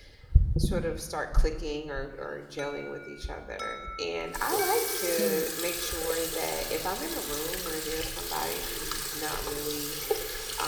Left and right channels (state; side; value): identical; both; correlation 1.00